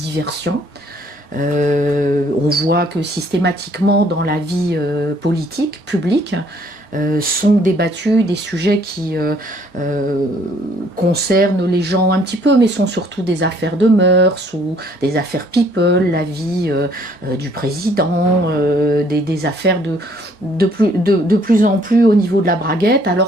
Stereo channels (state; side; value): late; left; 4.4 ms